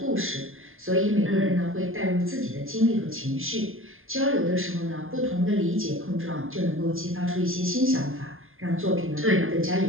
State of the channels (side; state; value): left; late; 0.60 ms